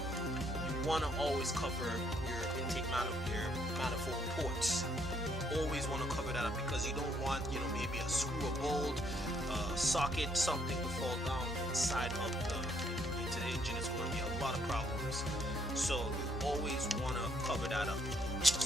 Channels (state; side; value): normal; both; correlation 0.70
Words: you want to always cover your intake manifold ports. Always want to cover that up, because you don't want, maybe a screw, a bolt, socket, something to fall down inside of into the engine. It's going to be a lot of problems. So you always want to cover that up.